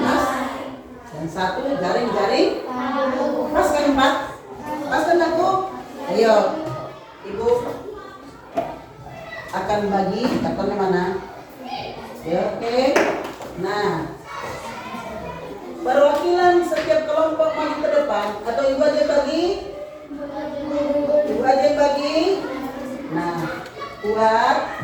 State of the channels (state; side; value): identical; both; correlation 1.00